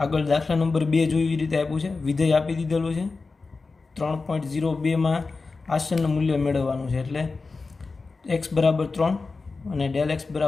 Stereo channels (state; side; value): quieter; right; 4.1 dB